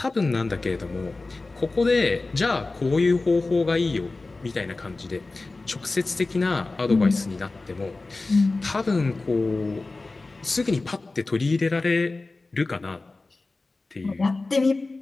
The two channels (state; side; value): quieter; right; 3.4 dB